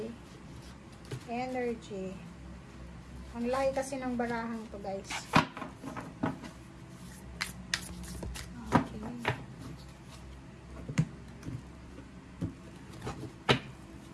energy. Ang laki kasi ng barahang to guys.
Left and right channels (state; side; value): identical; both; correlation 1.00